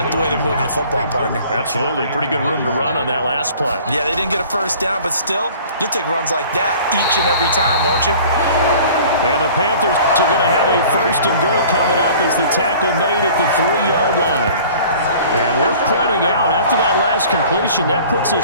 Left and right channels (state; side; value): inverted; both; correlation -0.47